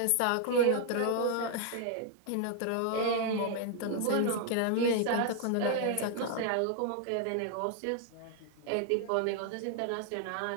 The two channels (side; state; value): both; different; correlation 0.00